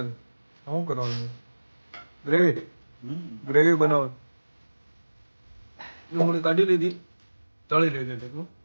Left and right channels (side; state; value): both; inverted; correlation -1.00